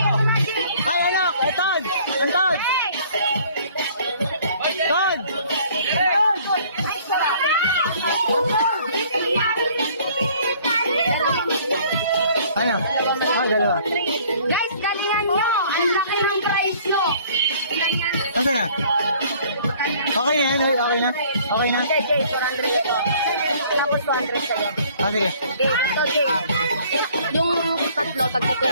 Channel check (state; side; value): inverted; both; correlation -0.56